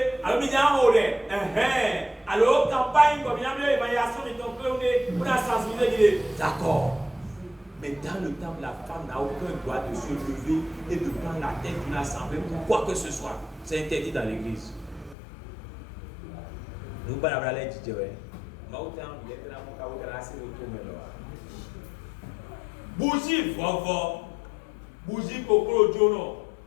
alors il y a un rôle. Alors, campagne, comme il y a une évaluation de ton clé, on a sensibilisé. D'accord. Mais dans le temps, la femme n'a aucun droit de se lever et de prendre la tête d'une assemblée pour quoi que ce soit. C'est interdit dans l'église. Nous ne pouvons pas aller dire, bougie, vovo. Bougie, coco, jono.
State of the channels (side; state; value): right; drops out; at 15.2 s